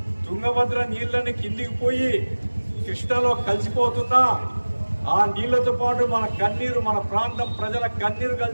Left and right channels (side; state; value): both; inverted; correlation -1.00